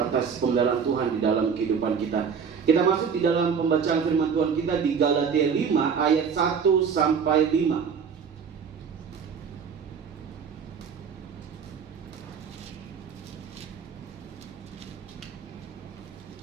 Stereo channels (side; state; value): left; quieter; 6.5 dB